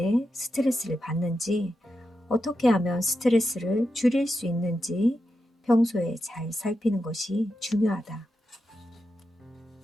스트레스를 받는지, 어떻게 하면 스트레스를 줄일 수 있는지 평소에 잘 살피는 것이 중요하다.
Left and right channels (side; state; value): both; normal; correlation 0.88